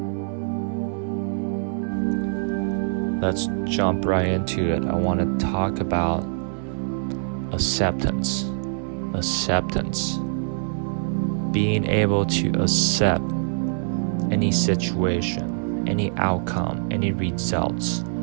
Let's jump right into it. I want to talk about acceptance. Being able to accept any situation, any outcome, any results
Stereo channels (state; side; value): silent; left; 62 dB below the other